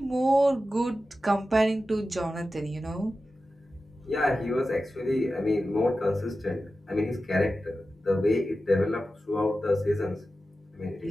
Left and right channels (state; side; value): normal; both; correlation 0.93